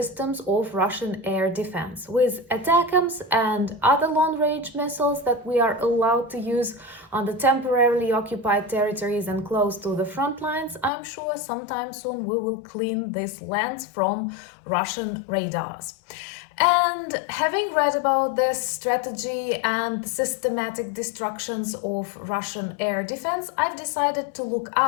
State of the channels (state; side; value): drops out; right; at 10.9 s